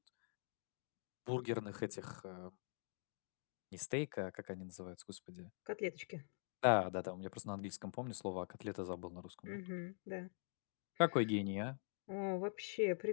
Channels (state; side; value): silent; right; digital silence